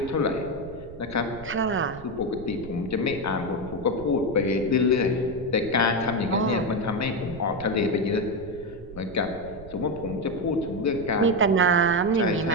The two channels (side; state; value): right; noise; rumble, 16 dB below the sound